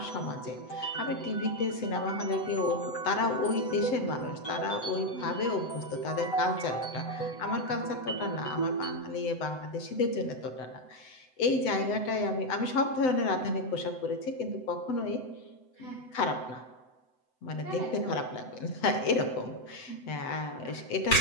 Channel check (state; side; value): late; right; 7.9 ms